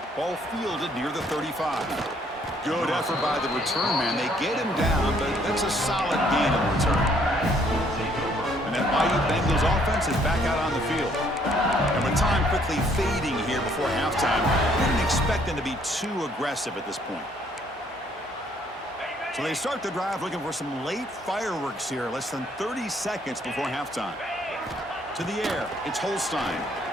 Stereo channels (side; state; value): both; normal; correlation 0.65